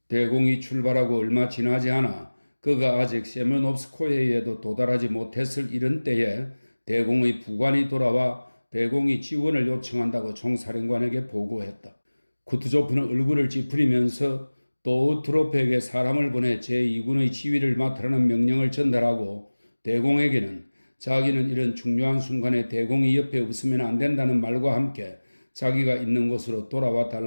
대공이 출발하고 얼마 지나지 않아 그가 아직 세면옵스코에에도 도달하지 못했을 이런 때에 대공의 부관이 돌아와 대공이 지원을 요청한다고 총사령관에게 보고했다. 쿠트조프는 얼굴을 찌푸리면서 또 트로프에게 사람을 보내 제2군의 지휘를 맡으라는 명령을 전달하고 대공에게는 자기는 이런 중요한 순간에 대공이 옆에 없으면 안 된다는 말과 함께 자기가 있는 곳으로 돌아와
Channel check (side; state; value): both; inverted; correlation -1.00